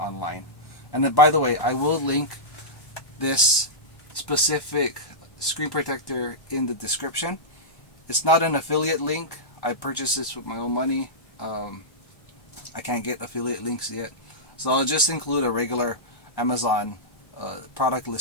And then, by the way, I will link this specific screen protector in the description. It's not an affiliate link. I purchased this with my own money. I can't get affiliate links yet, so I'll just include a regular Amazon product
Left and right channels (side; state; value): right; late; 1.1 ms